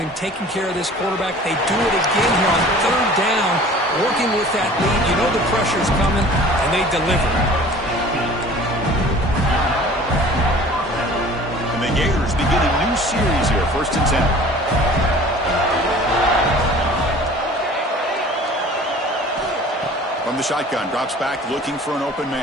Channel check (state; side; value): normal; both; correlation 0.46